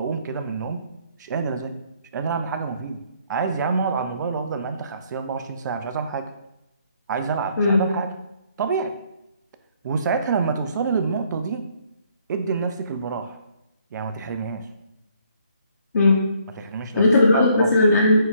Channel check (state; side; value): inverted; both; correlation -0.66